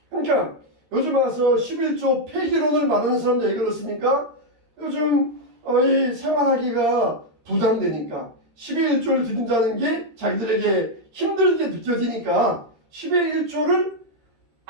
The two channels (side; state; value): left; late; 13 ms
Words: 그러니까 요즘 와서 11조 폐기론을 말하는 사람들 왜 그렇습니까? 요즘 이 생활하기가 부담되니까 10의 1조를 드린다는 게 자기들에게 힘들게 느껴지니까 10의 1조를